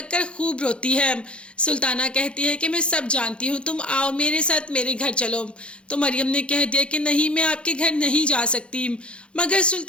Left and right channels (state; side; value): late; right; 0.058 ms